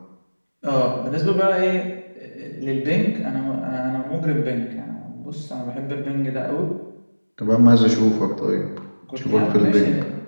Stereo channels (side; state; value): both; inverted; correlation -1.00